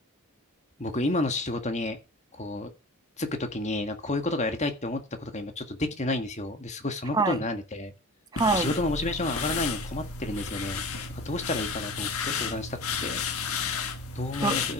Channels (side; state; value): both; normal; correlation 0.37